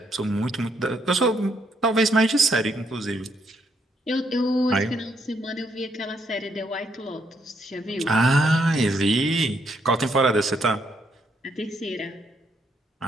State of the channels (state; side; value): normal; both; correlation 0.74